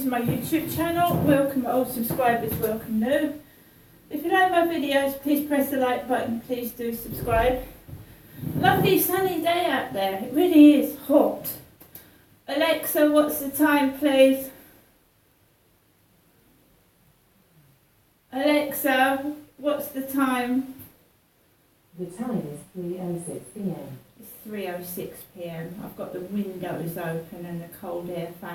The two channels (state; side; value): identical; both; correlation 1.00